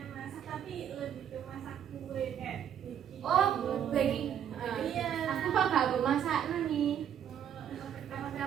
tapi lebih ke masak kue kayak bikin. oh baking Iya. aku kok gak masak nih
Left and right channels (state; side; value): quieter; left; 9.3 dB